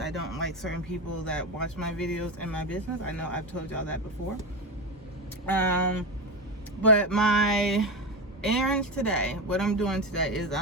don't like certain people that watch my videos in my business. I know I've told y'all that before. But my errands today, what I'm doing today is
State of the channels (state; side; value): normal; both; correlation 0.17